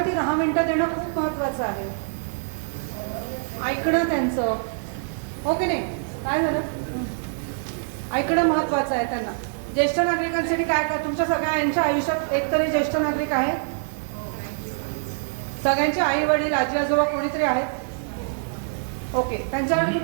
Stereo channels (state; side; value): silent; left; digital silence